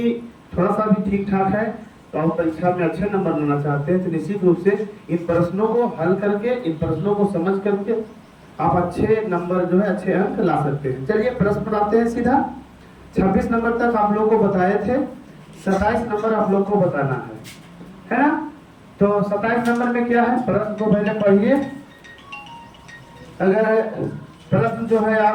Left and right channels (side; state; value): both; identical; correlation 1.00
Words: थोड़ा सा भी ठीक ठाक है तो आप परीक्षा में अच्छे नंबर लाना चाहते हैं, तो निश्चित रूप से इन प्रश्नों को हल करके, इन प्रश्नों को समझ करके आप अच्छे नंबर जो है, अच्छे अंक ला सकते हैं। चलिए प्रश्न बनाते हैं सीधा। 26 नंबर तक आप लोगों को बताए थे, 27 नंबर आप लोग को बताना है ना। तो 27 नंबर में क्या है, प्रश्न को पहले पढ़िए। अगर प्रश्न जो है